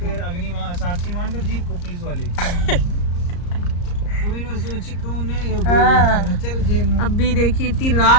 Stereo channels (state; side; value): late; right; 34 ms